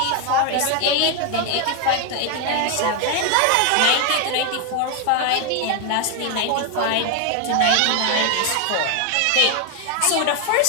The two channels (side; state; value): both; different; correlation 0.01